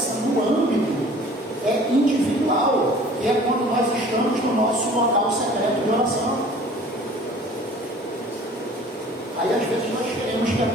no âmbito individual, que é quando nós estamos no nosso local secreto de oração. Aí às vezes nós queremos que a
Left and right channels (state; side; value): normal; both; correlation 0.48